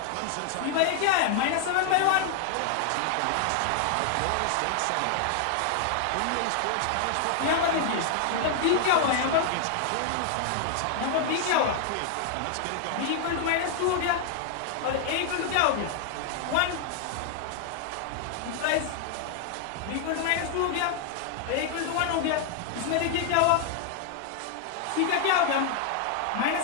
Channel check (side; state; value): both; different; correlation 0.00